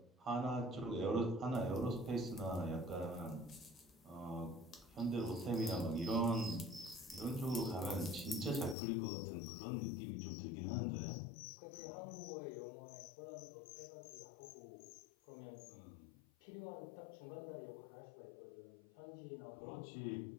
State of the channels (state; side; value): drops out; right; at 8.8 s